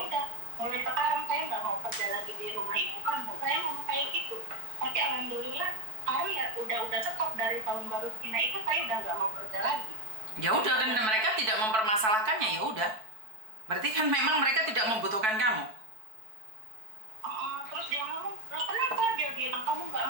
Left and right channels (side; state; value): left; late; 4.6 ms